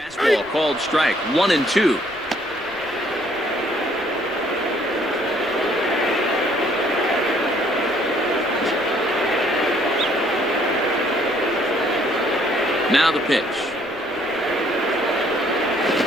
called strike, 1-2. Now the pitch.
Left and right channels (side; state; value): left; noise; rumble, 24 dB below the sound